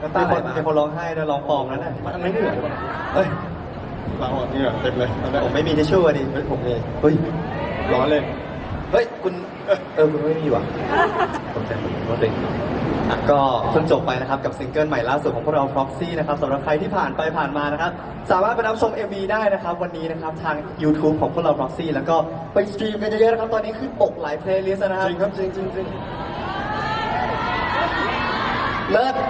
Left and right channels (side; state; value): both; identical; correlation 1.00